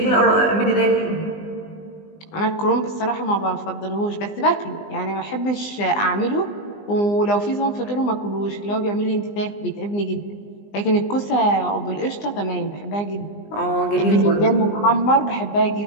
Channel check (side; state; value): right; late; 20 ms